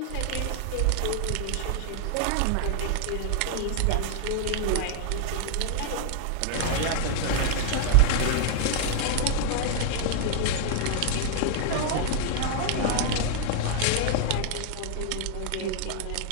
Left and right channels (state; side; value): different; both; correlation 0.00